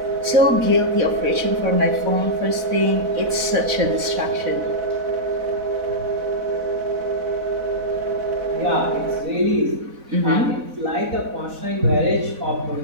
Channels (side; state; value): left; late; 4.0 ms